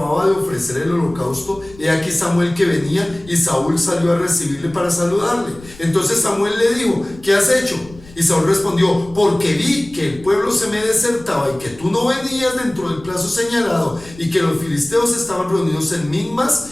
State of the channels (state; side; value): noise; left; rumble, 21 dB below the sound